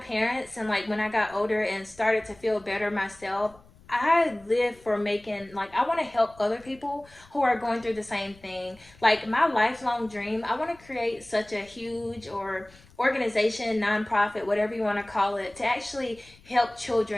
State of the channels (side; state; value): left; noise; rumble, 26 dB below the sound